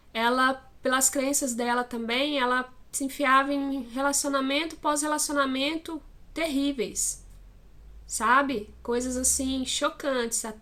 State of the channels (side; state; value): both; identical; correlation 1.00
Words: ela, pelas crenças dela também, ela se enfiava em relacionamento pós-relacionamento terríveis, sabe? Coisas assim, chocantes